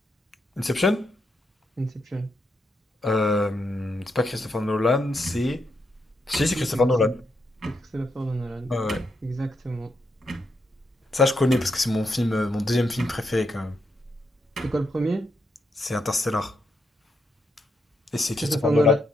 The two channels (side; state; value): both; normal; correlation 0.81